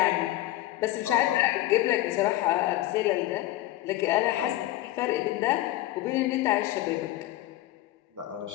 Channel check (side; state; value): right; quieter; 15.8 dB